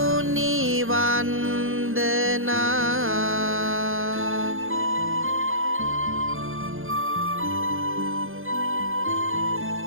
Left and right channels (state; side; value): late; left; 0.60 ms